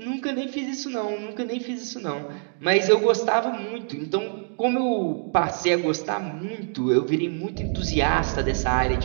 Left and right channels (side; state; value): left; silent; 62 dB below the other